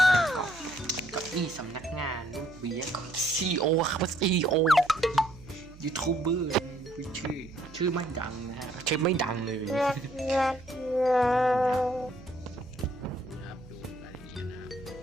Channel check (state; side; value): noise; right; hum, 20 dB below the sound